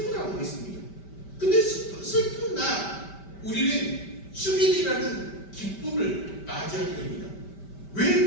했습니다. 근데 슬픈 날 우리는 축일이라는 기쁨을 맞이하게 됩니다. 왜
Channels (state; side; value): late; right; 5.1 ms